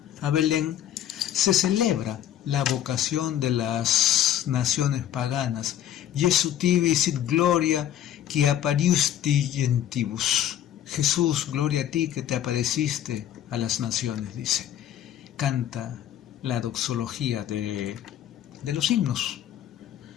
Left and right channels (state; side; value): quieter; right; 11.2 dB